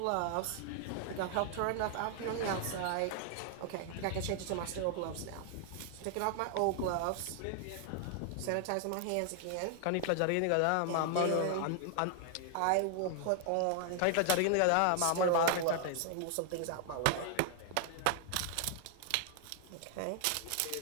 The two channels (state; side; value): different; both; correlation 0.00